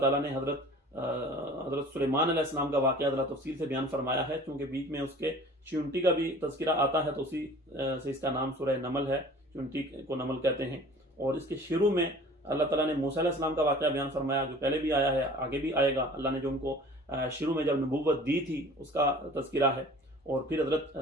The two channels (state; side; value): normal; both; correlation 0.46